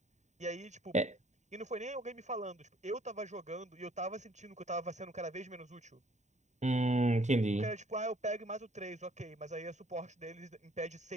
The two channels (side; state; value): left; late; 0.34 ms